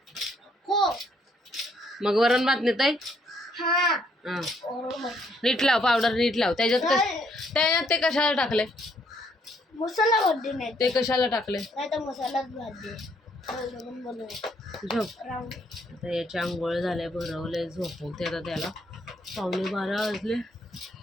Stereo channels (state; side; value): normal; both; correlation 0.69